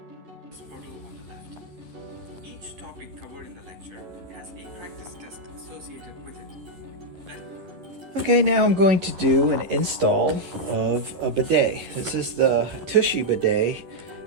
Each topic covered in the lecture has a practice test associated with it. Okay, now I'm going to do an install of a bidet. This is the Tushy bidet,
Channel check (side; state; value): left; late; 11 ms